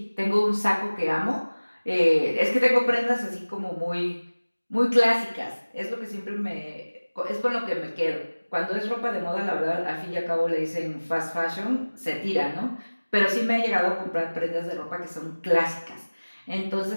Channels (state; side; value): inverted; both; correlation -1.00